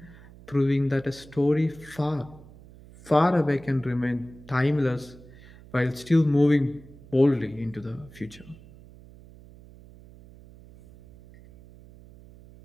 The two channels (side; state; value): right; noise; hum, 21 dB below the sound